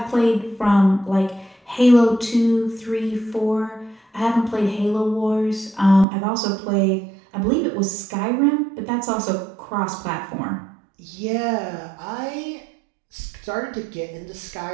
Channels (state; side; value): drops out; left; at 6.1 s